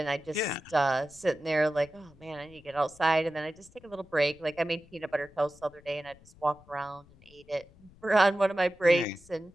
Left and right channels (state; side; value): noise; left; rumble, 25 dB below the sound